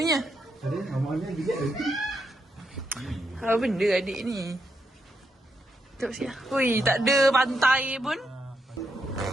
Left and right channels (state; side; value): normal; both; correlation 0.81